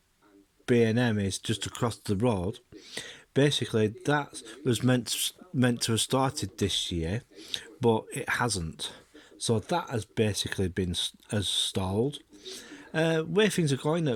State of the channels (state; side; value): identical; both; correlation 1.00